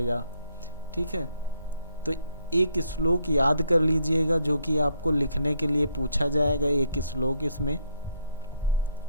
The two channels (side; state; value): both; inverted; correlation -0.72